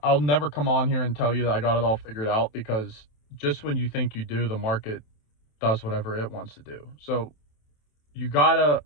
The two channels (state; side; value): late; right; 27 ms